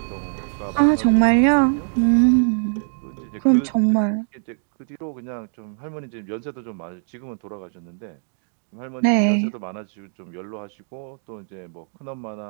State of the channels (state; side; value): silent; left; 58 dB below the other